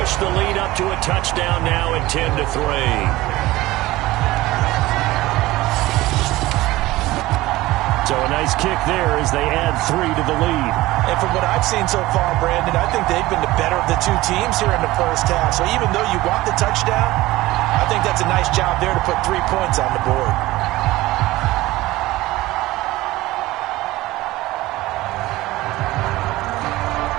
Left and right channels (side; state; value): left; quieter; 18.1 dB